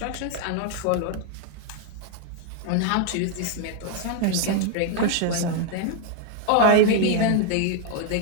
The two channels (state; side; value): different; both; correlation 0.00